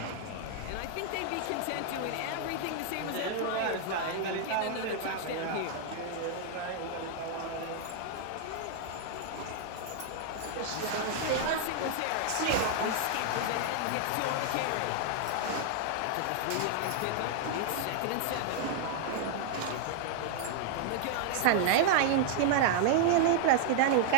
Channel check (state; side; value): different; both; correlation 0.00